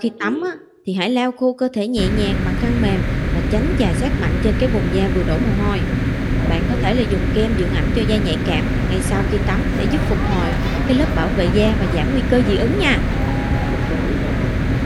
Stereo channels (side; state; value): both; identical; correlation 1.00